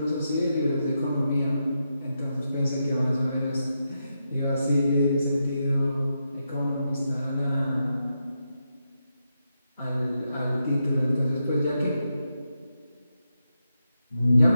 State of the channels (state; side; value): inverted; both; correlation -0.86